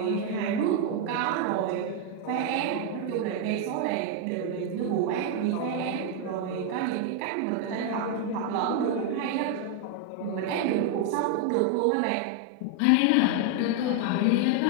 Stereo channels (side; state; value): both; different; correlation 0.01